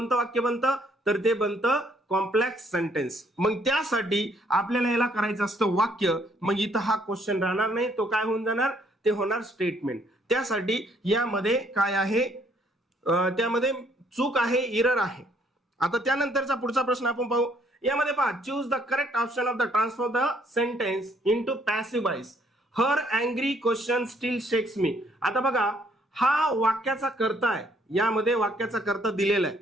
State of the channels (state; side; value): normal; both; correlation 0.66